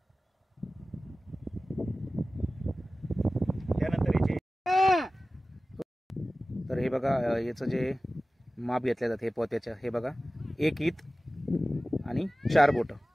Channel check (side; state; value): both; normal; correlation 0.96